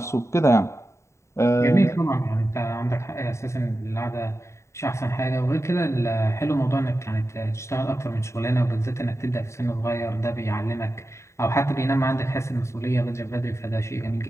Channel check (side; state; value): right; late; 0.14 ms